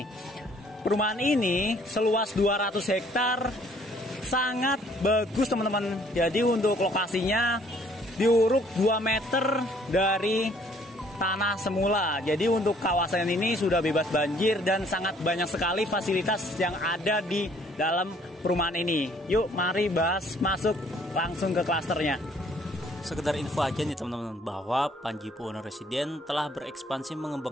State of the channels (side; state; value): both; normal; correlation 0.61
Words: Perumahan ini seluas 200 hektar, sangat bagus teman-teman. Jadi untuk lokasinya diuruk 2 meter dari tanah semula. Jadi untuk kawasan ini sudah bebas banjir dan sangat banyak sekali fasilitas yang ada di dalam perumahan ini. Yuk mari bahas, masuk langsung ke klasternya. Sekedar info aja nih teman-teman, bahwa Panji Buwono Residen telah berekspansi